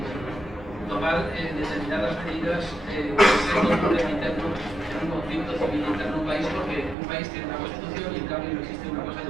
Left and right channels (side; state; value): left; drops out; at 7.0 s